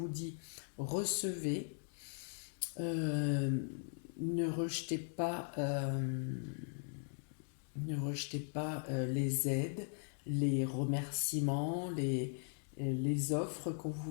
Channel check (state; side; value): silent; right; digital silence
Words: dit recevez, euh, ne rejetez pas, les aides, les remerciements, les offres qu'on vous